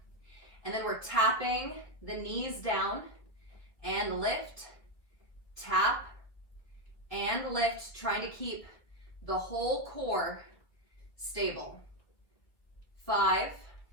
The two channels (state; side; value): late; right; 1.6 ms